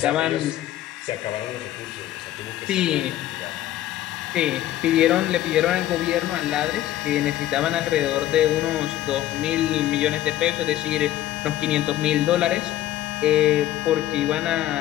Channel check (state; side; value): quieter; right; 13.5 dB